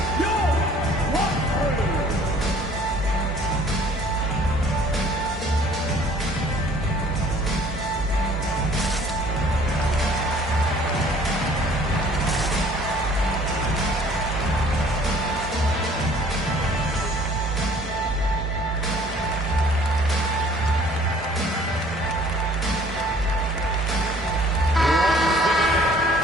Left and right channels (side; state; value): both; normal; correlation 0.55